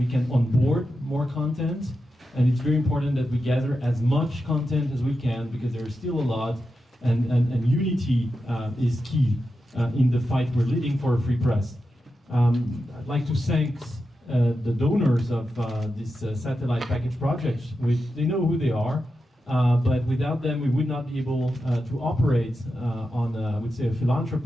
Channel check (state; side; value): normal; both; correlation 0.89